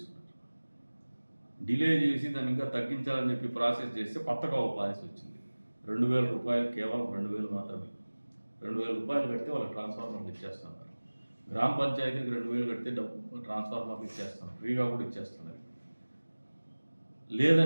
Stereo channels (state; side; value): inverted; both; correlation -1.00